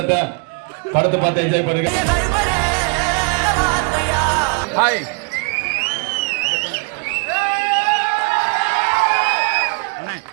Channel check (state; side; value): quieter; left; 34.0 dB